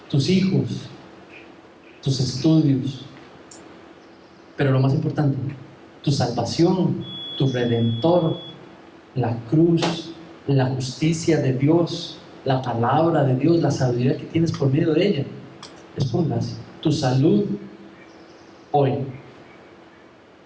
tus hijos, tus estudios, pero lo más importante, tu salvación, tu redentor, la cruz, la justicia de Dios, la palabra de Dios, la sabiduría que tienes por medio de ella, es por gracia. Tu salud hoy,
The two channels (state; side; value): identical; both; correlation 1.00